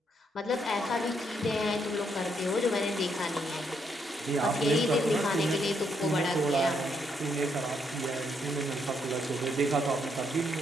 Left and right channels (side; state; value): both; normal; correlation 0.75